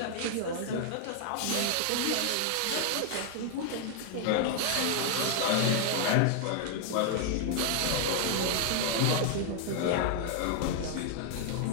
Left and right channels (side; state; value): both; different; correlation 0.00